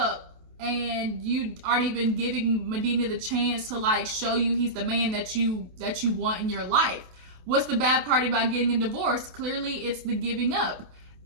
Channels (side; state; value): left; late; 28 ms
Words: and you aren't even giving Medina the chance to, like, show you he's the man that you want in your life. What's the bad part about getting a divorce? Clearly, it's the giving up.